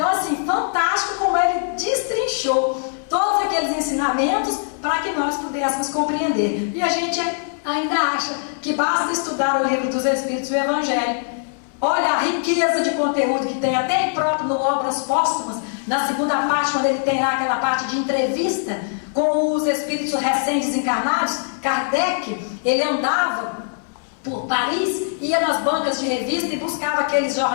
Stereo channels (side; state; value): right; silent; 65 dB below the other